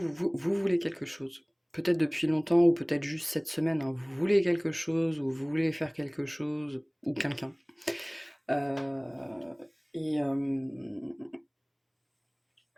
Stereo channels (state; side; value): identical; both; correlation 1.00